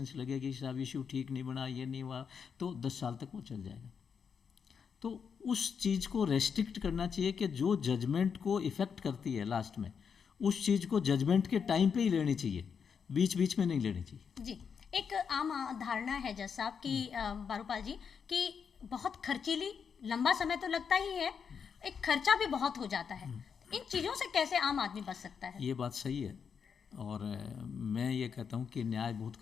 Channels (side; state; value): right; quieter; 6.6 dB